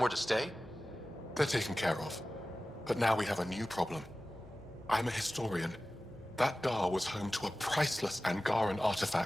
to stay? They're taken care of. But now we have a new problem. I'm a historian. That Dar was home to a priceless Angaran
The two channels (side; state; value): both; normal; correlation 0.96